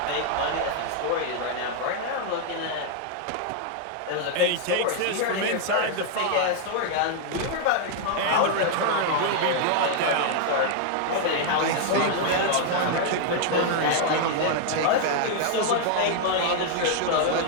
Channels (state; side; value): different; both; correlation 0.00